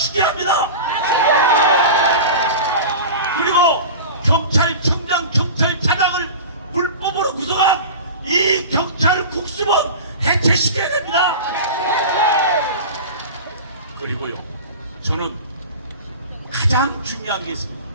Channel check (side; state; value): both; inverted; correlation -0.31